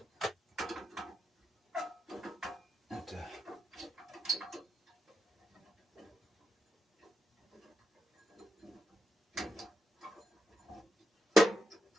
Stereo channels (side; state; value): both; normal; correlation 0.85